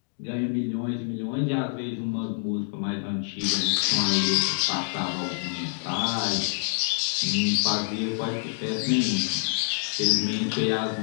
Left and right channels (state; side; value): silent; right; digital silence